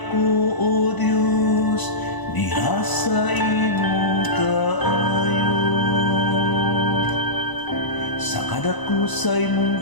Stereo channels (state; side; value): late; right; 1.0 ms